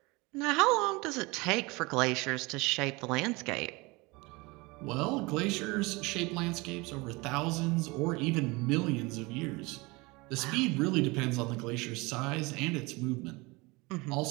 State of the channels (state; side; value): quieter; left; 24.8 dB